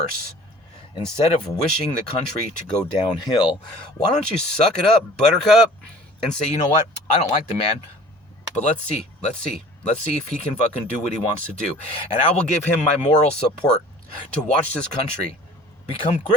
Instead of wishing the country to go downhill, why don't you suck it up, buttercup, and say, you know what, I don't like the man, but let's see if he can fucking do what he wants to do. And I will give him my moral support to watch this country become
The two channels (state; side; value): normal; both; correlation 0.47